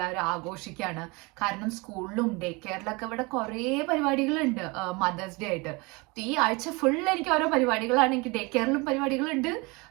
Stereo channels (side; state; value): left; quieter; 26.4 dB